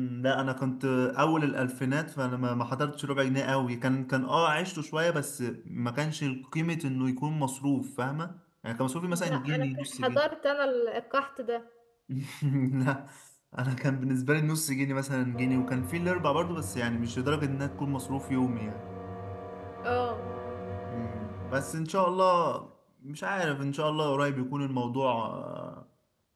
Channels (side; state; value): both; identical; correlation 1.00